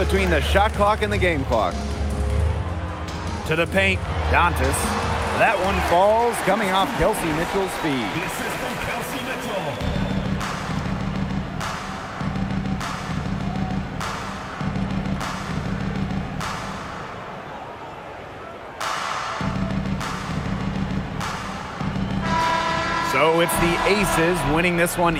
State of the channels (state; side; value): identical; both; correlation 1.00